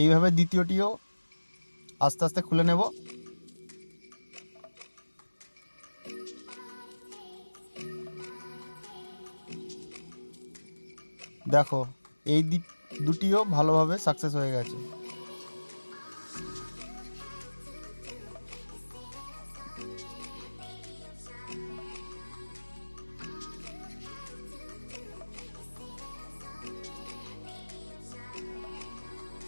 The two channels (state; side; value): inverted; both; correlation -1.00